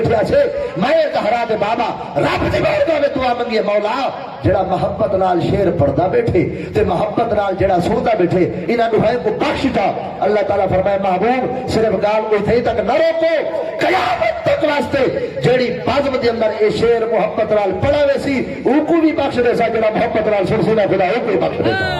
اسے میں طہرا دے بابا رب دی بارگاہ وچ دعا منگی مولا جڑا محبت نال شیر پڑھدا بیٹھے تے محبت نال جڑا سندا بیٹھے انہاں نو ہے کو بخش دا اللہ تعالی فرمائے محبوب صرف گال اوتھے تک نہ روکو قیامت تک واسطے جڑی بزم دے اندر اے شیر محبت نال پڑھا ویسی او کو بھی بخش دے سا جڑا محبت نال سن خدا او کو بخش دے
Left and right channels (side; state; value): both; identical; correlation 1.00